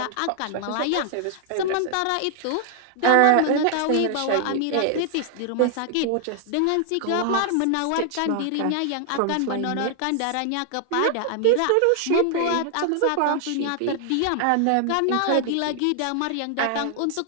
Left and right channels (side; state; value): both; different; correlation 0.00